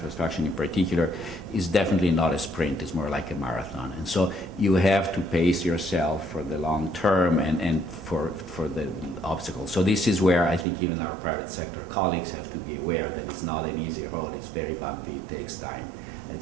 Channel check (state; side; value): drops out; left; at 10.7 s